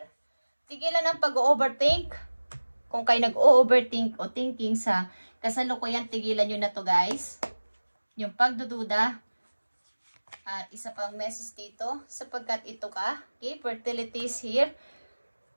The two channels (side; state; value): both; inverted; correlation -1.00